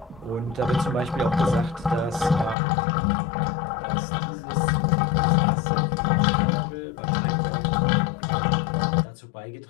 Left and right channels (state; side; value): drops out; right; at 2.6 s